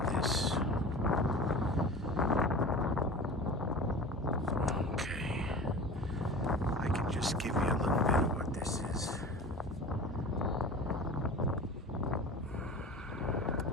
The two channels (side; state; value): both; normal; correlation 0.36